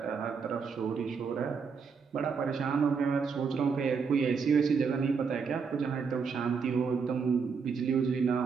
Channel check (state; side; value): quieter; left; 5.6 dB